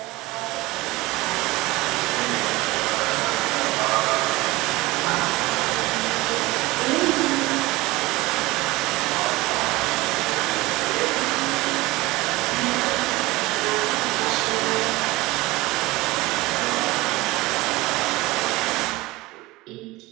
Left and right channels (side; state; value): left; quieter; 20.6 dB